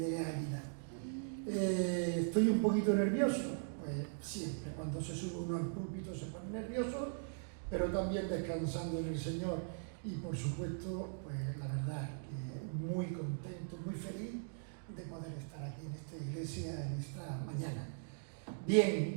a Águila. Estoy un poquito nervioso, pues siempre, cuando se sube uno al púlpito se pone nervioso, pero también descansando en el Señor. Y por supuesto, pues la verdad que muy contento, muy feliz de poder estar aquí en esta iglesia en esta mañana.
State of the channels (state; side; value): silent; left; digital silence